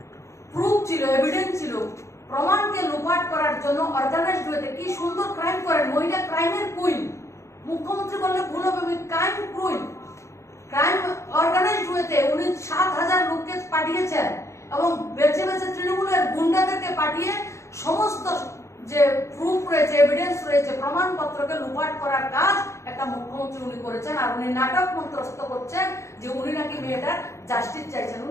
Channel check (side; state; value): right; late; 0.14 ms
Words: প্রুফ ছিল, এভিডেন্স ছিল, প্রমাণকে লুপাট করার জন্য অর্গানাইজড ওয়েতে কি সুন্দর ক্রাইম করেন। মহিলা ক্রাইমের কুইন, মুখ্যমন্ত্রী বললে ভুল হবে, ক্রাইম কুইন। ক্রাইম অর্গানাইজড ওয়েতে উনি 7,000 লোককে পাঠিয়েছেন এবং বেছে বেছে তৃণমূলের গুন্ডাদেরকে পাঠিয়ে সমস্ত যে প্রুফ রয়েছে, এভিডেন্স রয়েছে, প্রমাণপত্রকে লুপাট করার কাজ একটা মুখ্যমন্ত্রী উনি করেছেন। আর উনি নাটক মন্ত্রস্থ করছেন যে উনি নাকি মেয়েটার জাস্টিস চাইছেন।